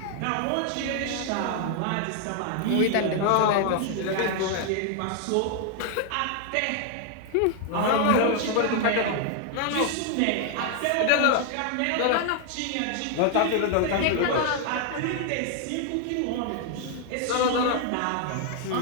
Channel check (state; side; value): different; both; correlation 0.00